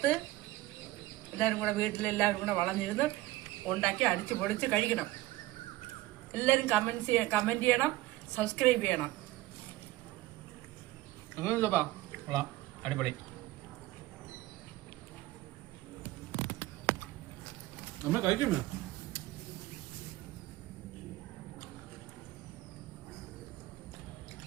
എല്ലാവരും കൂടെ വീട്ടിലെല്ലാവരും കൂടെ വളർന്നിരുന്ന് ഉണ്ടാക്കി അടിച്ച് പൊടിച്ച് കഴിക്കണം. എല്ലാവരും കമൻറ്റ് ചെയ്യണം, സബ്സ്ക്രൈബ് ചെയ്യണം. അടിപൊളി. നമ്മൾ കഴിക്കുമോ?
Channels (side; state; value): left; quieter; 17.1 dB